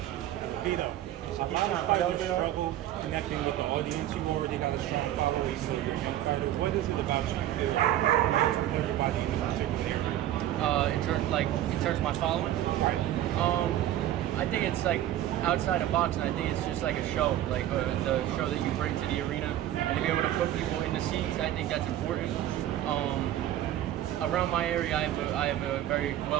Vito, a lot of fighters struggle connecting with the audience. You've already got a strong following, so you're a young fighter. What is it about you feel connects with everybody in a particular area? In terms of my following? Right. I think it's like outside of boxing. I think it's just like a show, like the show that you bring to the arena, and to be able to put people in the seats. I think that's important. Around my area, I have a very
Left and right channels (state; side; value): quieter; left; 12.7 dB